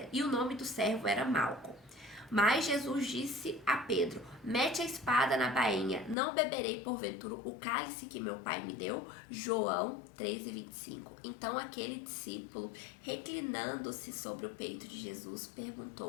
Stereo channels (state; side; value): drops out; right; at 6.2 s